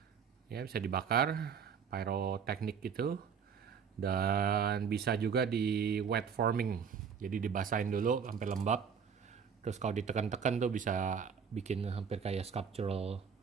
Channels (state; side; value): quieter; left; 6.8 dB